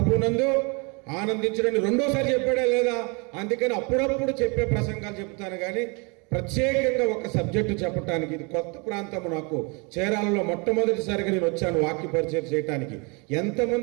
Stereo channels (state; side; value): quieter; left; 31.2 dB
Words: ఆనందించడని రెండోసారి చెప్పాడే లేదా, అందుకని అప్పుడప్పుడు చెప్పే ప్రసంగాలు చెప్తాను. కానీ ప్రత్యేకంగా ఒక సబ్జెక్టు చెప్పడానికి, ఇది కొత్త ప్రాంతం నాకు. చీరాలలో మొట్టమొదటిసారిగా నేను వచ్చాను వాక్య పరిచయం చేయడానికి.